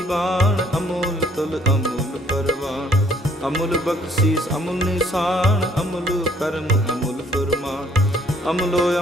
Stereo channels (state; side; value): normal; both; correlation 0.62